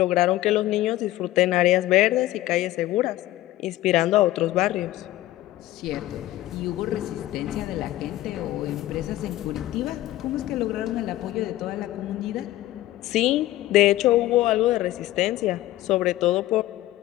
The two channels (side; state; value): right; quieter; 15.6 dB